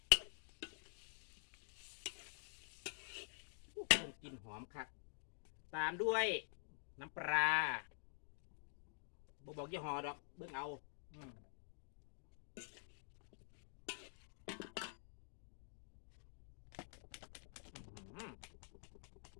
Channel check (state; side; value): silent; right; digital silence